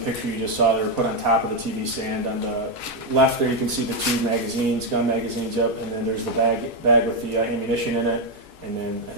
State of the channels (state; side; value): normal; both; correlation 0.03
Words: you just saw. They were put on top of the TV stand. On the left there you can see the 2 magazines, gun magazines up, and then there's the bag with the ammunition in it. And then I